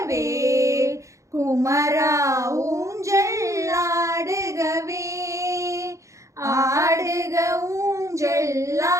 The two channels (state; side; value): late; left; 0.15 ms